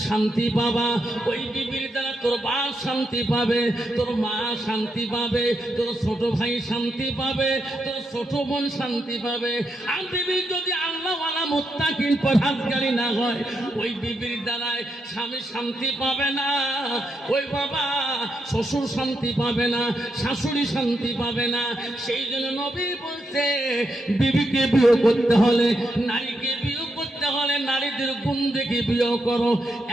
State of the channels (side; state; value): both; normal; correlation 0.82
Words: শান্তি পাবা, ওই বিবির দ্বারা তোর বাপ শান্তি পাবে, তোর মা শান্তি পাবে, তোর ছোট ভাই শান্তি পাবে, তোর ছোট বোন শান্তি পাবে। আর বিবি যদি আল্লাহওয়ালা মুত্তাকিন পরহেজগারি না হয়, ওই বিবির দ্বারায় স্বামী শান্তি পাবে না, ওই বাবা শ্বশুর শান্তি পাবে না, শাশুড়ি শান্তি পাবে না। সেই জন্য নবী বলছে বিবিকে বিয়ে করতে হলে, নারীকে বিয়ে করতে হলে নারীদের গুণ দেখে বিয়ে করো।